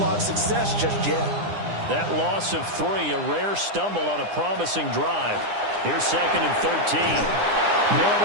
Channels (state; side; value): late; left; 9.8 ms